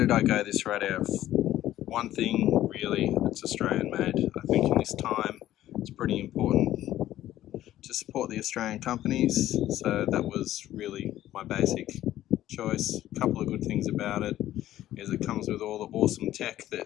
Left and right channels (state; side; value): quieter; right; 13.5 dB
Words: I go this radio? One thing, really, it's Australian made. I think in this time it's pretty important to support the Australian companies, so that was really my basic choice. A couple of good things about it is it comes with all the awesome tech